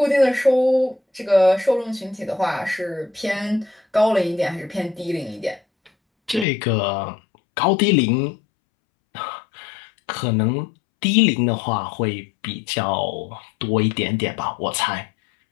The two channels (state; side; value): drops out; right; at 6.5 s